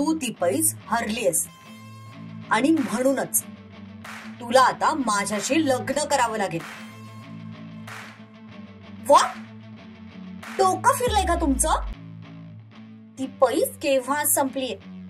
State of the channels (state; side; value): identical; both; correlation 1.00